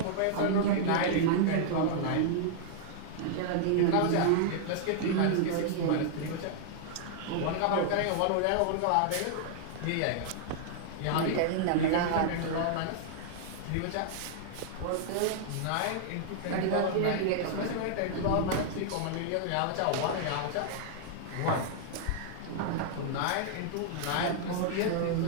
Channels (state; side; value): different; both; correlation -0.01